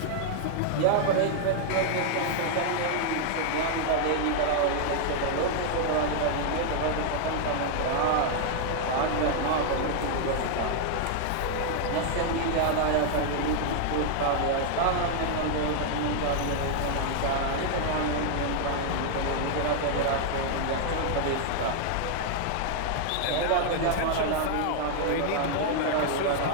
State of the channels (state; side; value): different; both; correlation 0.00